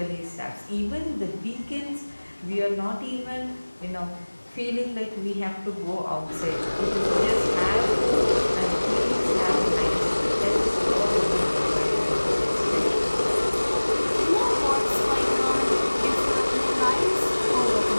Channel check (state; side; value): inverted; both; correlation -1.00